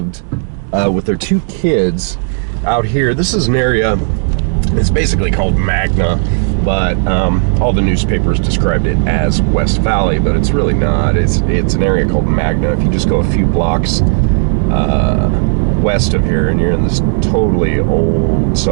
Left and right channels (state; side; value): silent; left; digital silence